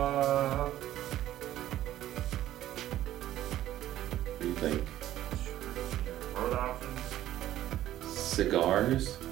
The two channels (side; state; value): left; quieter; 13.3 dB